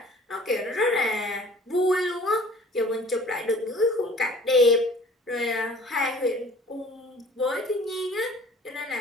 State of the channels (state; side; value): normal; both; correlation 0.49